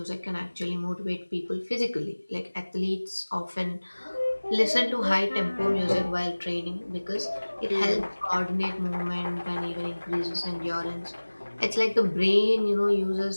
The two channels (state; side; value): inverted; both; correlation -1.00